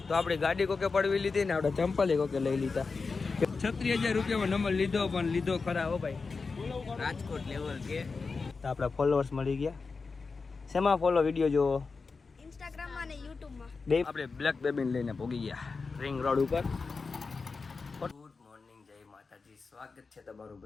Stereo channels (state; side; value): quieter; right; 4.5 dB